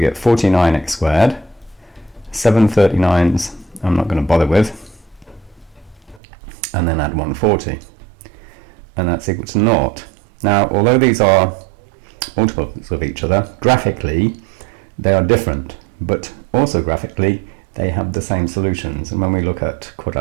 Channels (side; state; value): left; drops out; at 6.2 s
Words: 49x squared, 7 39s I'm not going to bother with, and then add 140, and that's equal to 0. Now, although these are multiples of each other, graphically they are different, but also graphically they have the same solutions. And when we look at